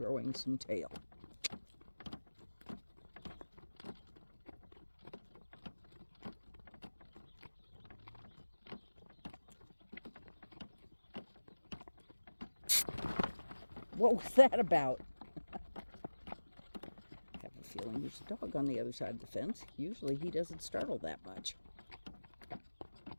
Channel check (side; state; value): both; inverted; correlation -1.00